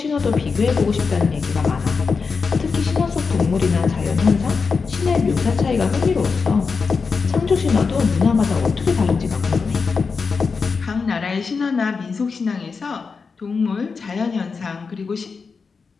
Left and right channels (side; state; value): right; quieter; 5.0 dB